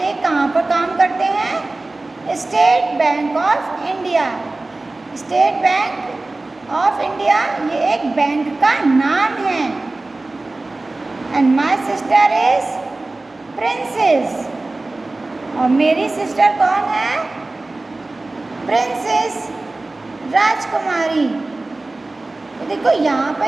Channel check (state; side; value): quieter; left; 3.1 dB